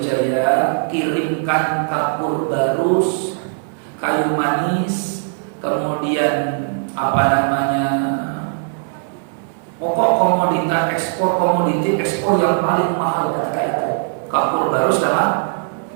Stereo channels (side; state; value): left; silent; digital silence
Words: kirimkan kapur barus, kayu manis, kemudian pokok komoditi ekspor yang paling mahal ketika itu. Kapur barus sama